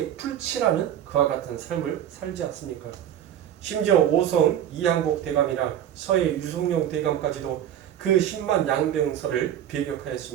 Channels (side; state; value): left; quieter; 10.5 dB